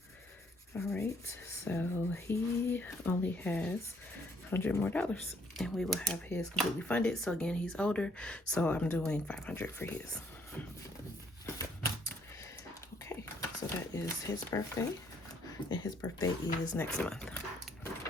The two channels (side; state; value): both; normal; correlation 0.67